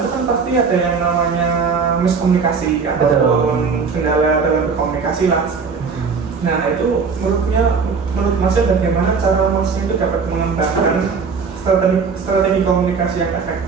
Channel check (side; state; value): left; quieter; 5.3 dB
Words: kan pasti ada yang namanya miskomunikasi ataupun kendala dalam berkomunikasi lah. Nah itu menurut Masnya bagaimana cara Masnya itu dapat mengembangkan strategi komunikasi yang